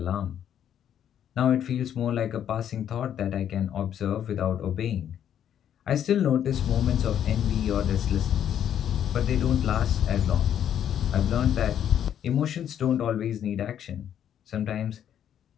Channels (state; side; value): quieter; right; 9.8 dB